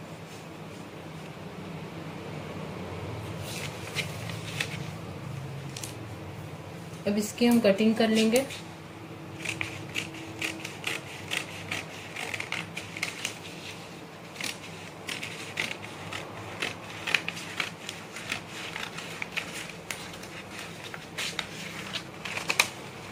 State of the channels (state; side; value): identical; both; correlation 1.00